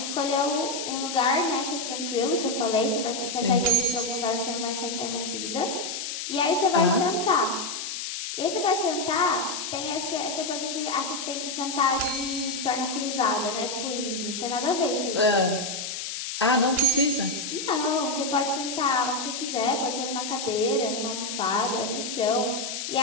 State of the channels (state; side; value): noise; left; hiss, 5 dB below the sound